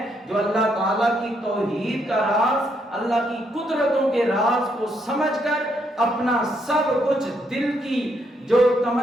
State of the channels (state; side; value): normal; both; correlation 0.75